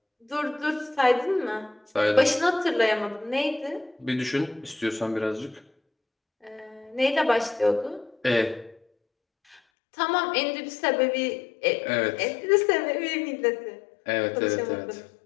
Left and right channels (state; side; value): drops out; right; at 9.6 s